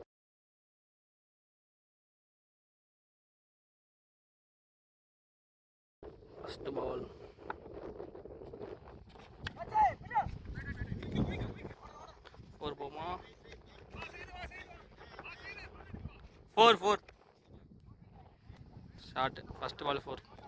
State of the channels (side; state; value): both; identical; correlation 1.00